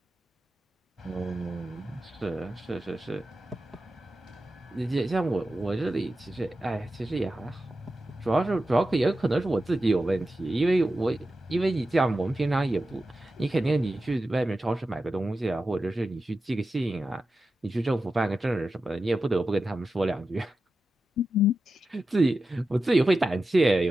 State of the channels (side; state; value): both; normal; correlation 0.92